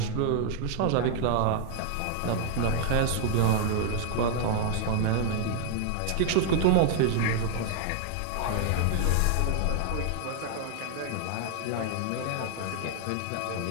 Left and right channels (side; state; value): both; different; correlation 0.00